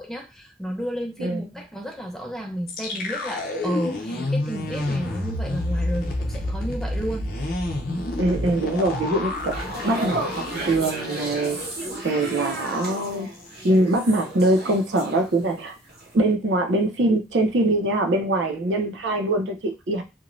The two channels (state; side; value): normal; both; correlation 0.51